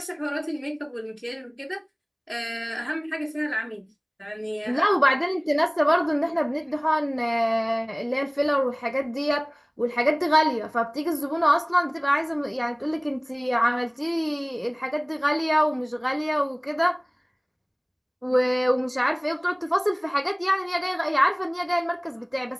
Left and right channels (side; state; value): both; identical; correlation 1.00